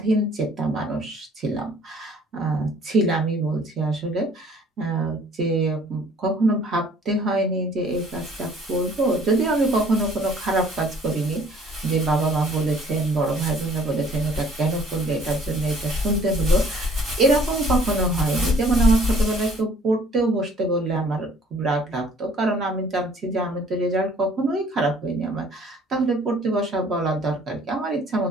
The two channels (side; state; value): both; normal; correlation 0.56